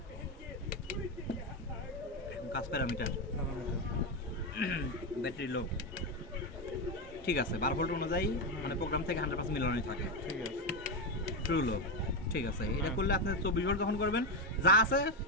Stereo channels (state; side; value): normal; both; correlation 0.09